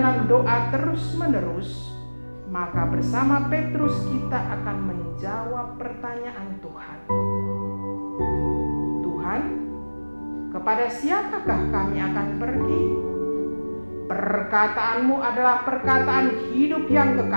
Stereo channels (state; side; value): inverted; both; correlation -1.00